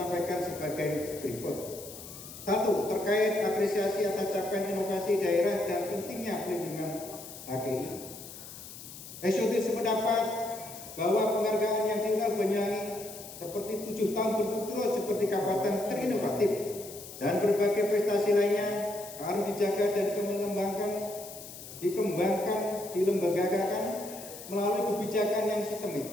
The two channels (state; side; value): noise; left; hiss, 14 dB below the sound